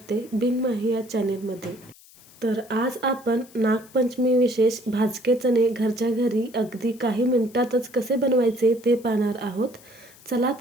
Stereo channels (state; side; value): noise; left; hiss, 24 dB below the sound